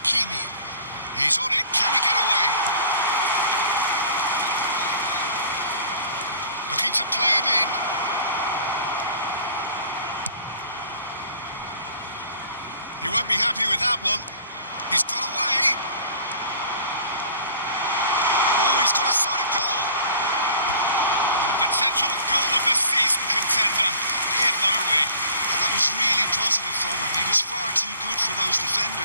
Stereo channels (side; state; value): both; inverted; correlation -0.48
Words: He's on it. Can he get away? Looking to play him in. He won't be happy with that one. He's got away. Oh, he's got a sight of goal. A potential goal of the season contender, if only. And that was really positive from him. He was far too good for those